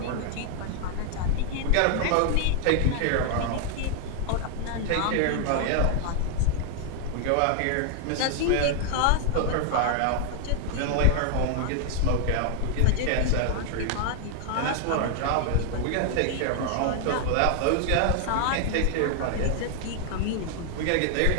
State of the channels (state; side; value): different; both; correlation 0.00